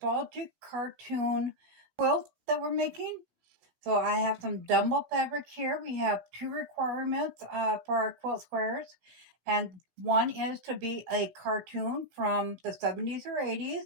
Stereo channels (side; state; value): left; late; 17 ms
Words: cartoon quilt that we're making. So I have some Dumbo fabric here. We have two requirements for our quilt squares. And one is to be a cartoon from the 70s or 80s.